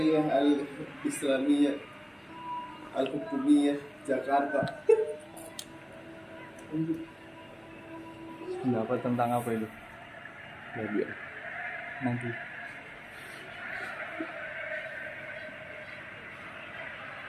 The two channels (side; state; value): both; identical; correlation 1.00